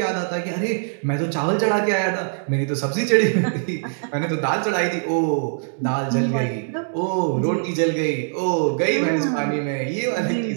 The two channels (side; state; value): left; silent; digital silence